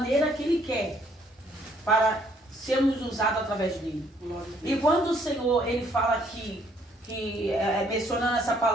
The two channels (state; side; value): normal; both; correlation 0.66